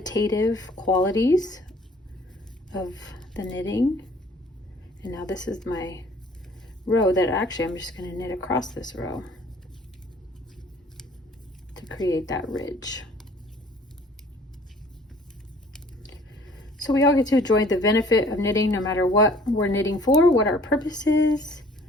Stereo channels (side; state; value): both; normal; correlation 0.54